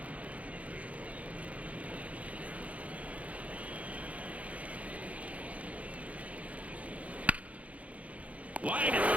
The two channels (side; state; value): left; late; 0.067 ms